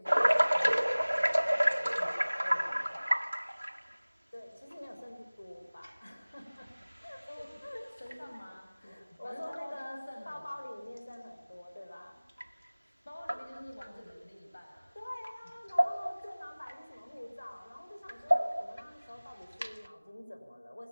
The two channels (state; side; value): inverted; both; correlation -1.00